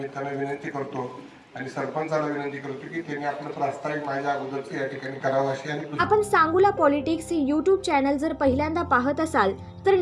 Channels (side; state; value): both; identical; correlation 1.00